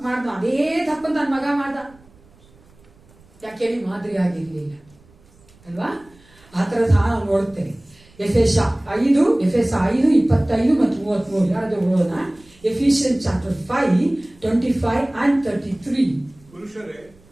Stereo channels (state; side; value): noise; right; rumble, 29 dB below the sound